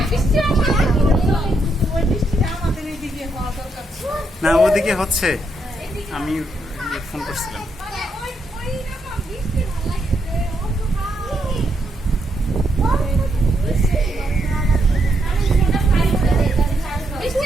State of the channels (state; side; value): normal; both; correlation 0.78